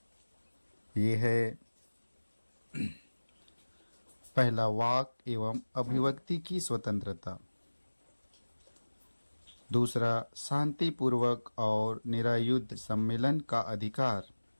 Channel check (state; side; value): inverted; both; correlation -1.00